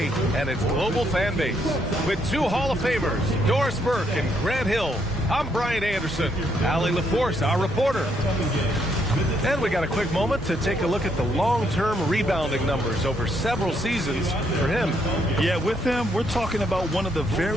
and its global fan base. With two Hall of Famers, Doris Burke and Grant Hill, I'm Brian Anderson. Allie LaForce, our reporter. And we got a quick moment to take a look at the long-term rebounding numbers over several seasons for him. Yeah, with him, we're talking about one of the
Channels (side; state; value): both; normal; correlation 0.73